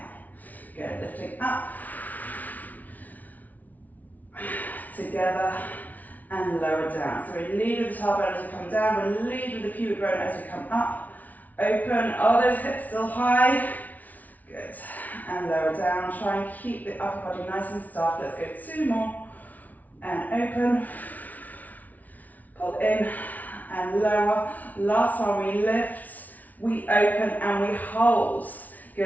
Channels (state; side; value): late; right; 0.075 ms